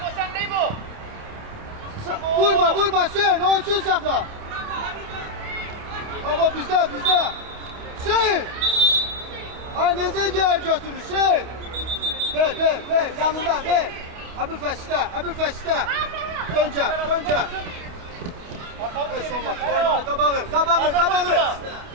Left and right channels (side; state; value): left; late; 28 ms